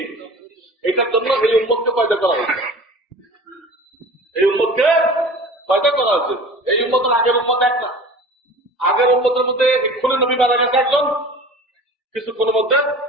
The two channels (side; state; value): both; normal; correlation 0.40